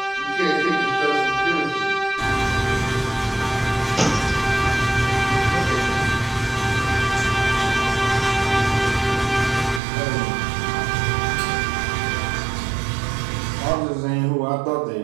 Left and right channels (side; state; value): left; drops out; at 9.8 s